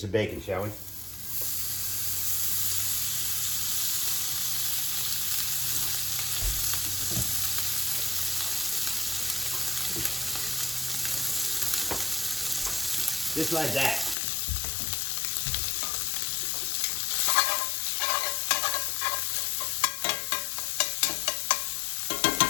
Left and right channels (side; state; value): right; drops out; at 14.2 s